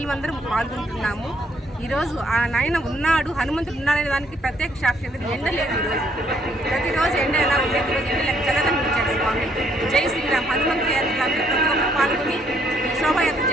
పాల్గొంటున్నాము. ఈరోజు ఆ నాయన ఉన్నాడు, హనుమంతుడు ఉన్నాడనే దానికి ప్రత్యేక సాక్షి. ఎండ లేదు ఈరోజు, ప్రతిరోజు ఎండ ఎలా ఉండేది, ఈరోజు ఎండ చల్లదనిపించాడు స్వామి. జై శ్రీరామ్. హనుమంతు యాత్రలు అందరూ ప్రతి ఒక్కరు పాల్గొని శోభాయాత్ర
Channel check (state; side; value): normal; both; correlation 0.68